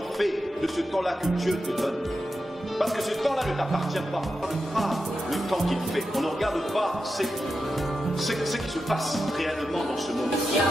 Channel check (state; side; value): normal; both; correlation 0.89